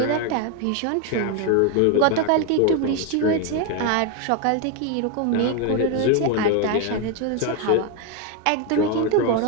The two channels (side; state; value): both; different; correlation 0.01